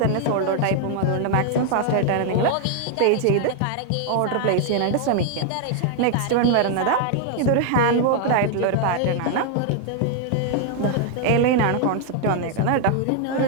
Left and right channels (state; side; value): different; both; correlation 0.00